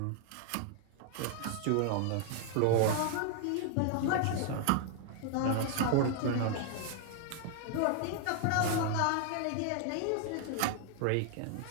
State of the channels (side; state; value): both; different; correlation 0.00